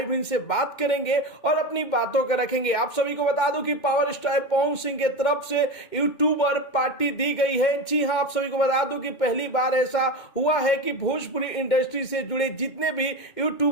इनसे बात करेंगे और अपनी बातों को रखेंगे। आप सभी को बता दूं कि पावर स्टार पवन सिंह के तरफ से यूट्यूबर पार्टी दी गई है। जी हां, आप सभी को बता दूं कि पहली बार ऐसा हुआ है कि भोजपुरी इंडस्ट्री से जुड़े जितने भी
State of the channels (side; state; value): right; late; 2.2 ms